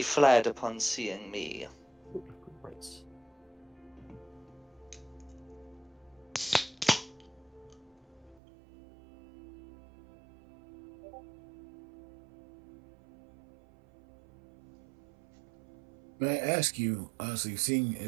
fled upon seeing me. May I ask you, honestly, seeing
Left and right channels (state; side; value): drops out; left; at 8.4 s